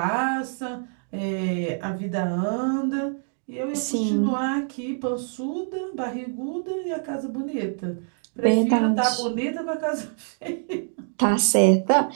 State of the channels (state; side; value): silent; left; digital silence